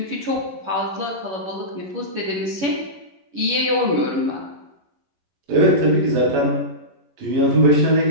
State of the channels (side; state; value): left; late; 11 ms